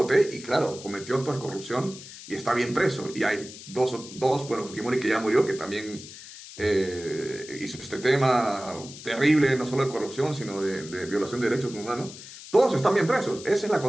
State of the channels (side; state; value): left; noise; hiss, 15 dB below the sound